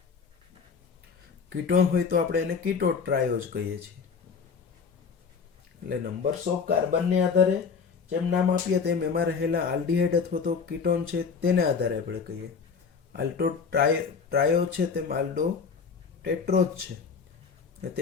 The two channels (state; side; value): quieter; right; 5.7 dB